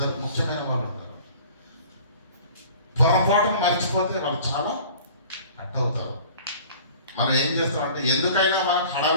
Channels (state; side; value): inverted; both; correlation -0.47